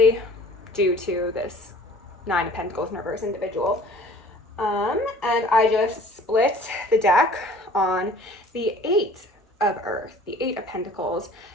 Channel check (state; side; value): normal; both; correlation 0.50